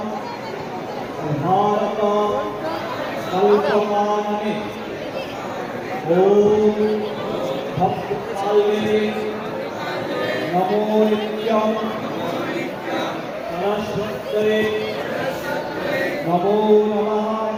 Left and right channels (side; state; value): both; identical; correlation 1.00